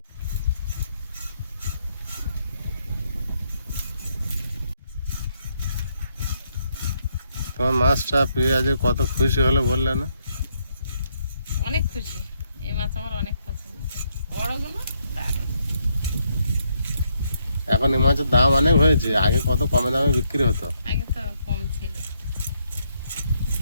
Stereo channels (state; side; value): inverted; both; correlation -0.75